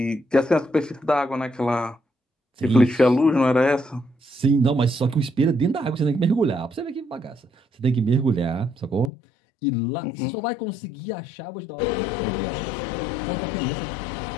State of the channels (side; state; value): right; drops out; at 9.1 s